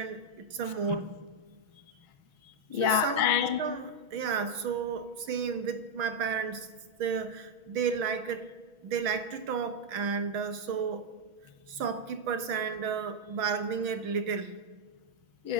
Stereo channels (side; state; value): left; late; 6.3 ms